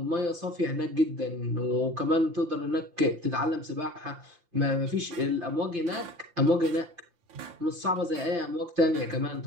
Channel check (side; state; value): left; late; 5.8 ms